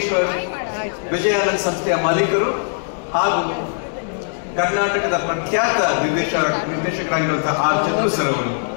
ವಿಜಯಾನಂದ್ ಸಂಸ್ಥೆಯ ಮಾಲೀಕರು ಹಾಗೂ ಕರ್ನಾಟಕದ ಪ್ರಖ್ಯಾತ ನಿರ್ದೇಶಕರಾಗಿರುವಂತಹ ಆರ್ ಚಂದ್ರು ಸರ್ ಅವರು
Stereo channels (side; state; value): right; silent; digital silence